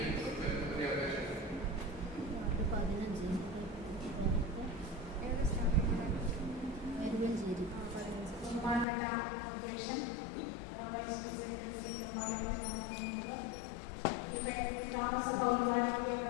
ബഹുമാനപ്പെട്ട അധ്യക്ഷൻ വൈസ് പ്രസിഡന്റ് ശ്രീ ഗ്രാമസഭ ഉദ്ഘാടനത്തിലുള്ള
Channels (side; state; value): right; drops out; at 8.8 s